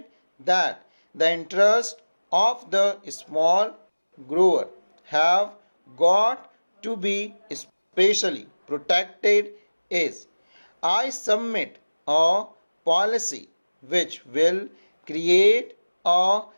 that the interest of the small grower have got to be specially protected, is I submit a policy which will create a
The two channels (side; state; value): both; inverted; correlation -1.00